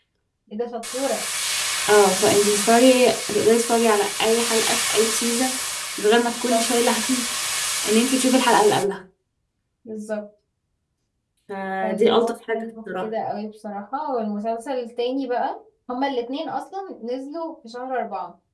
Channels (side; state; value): both; identical; correlation 1.00